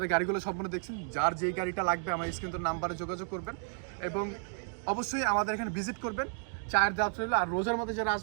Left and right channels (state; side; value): silent; left; 56 dB below the other